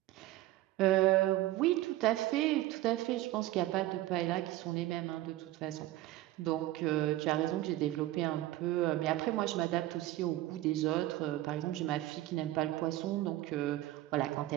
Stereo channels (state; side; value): quieter; left; 16.1 dB